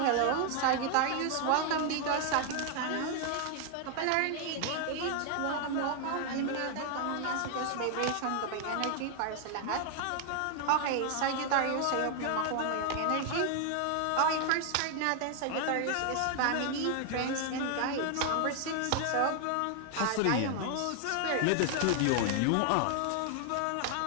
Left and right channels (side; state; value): both; different; correlation 0.00